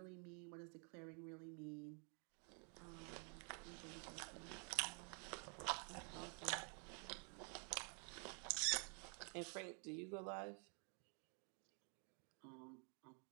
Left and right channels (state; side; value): quieter; left; 39.9 dB